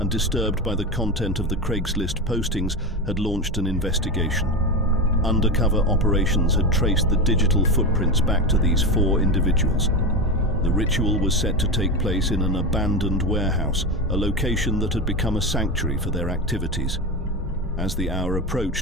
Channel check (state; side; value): normal; both; correlation 0.18